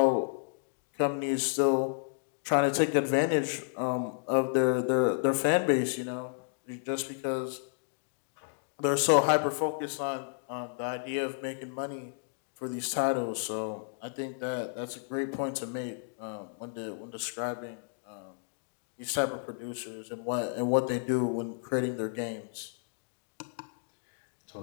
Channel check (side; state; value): right; silent; digital silence